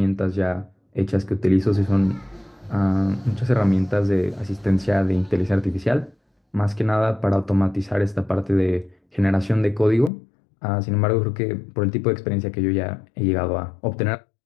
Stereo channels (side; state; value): right; drops out; at 10.1 s